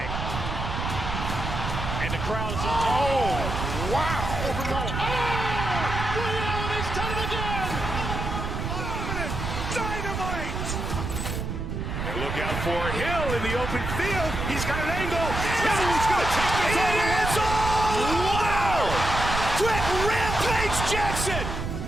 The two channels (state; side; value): noise; right; rumble, 4 dB below the sound